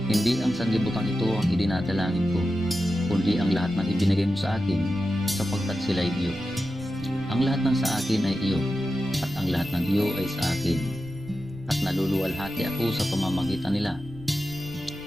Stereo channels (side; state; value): right; noise; rumble, 18 dB below the sound